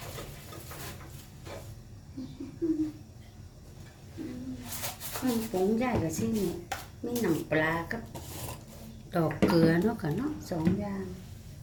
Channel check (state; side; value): identical; both; correlation 1.00